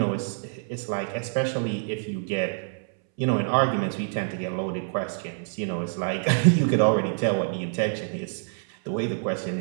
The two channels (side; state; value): left; silent; 61 dB below the other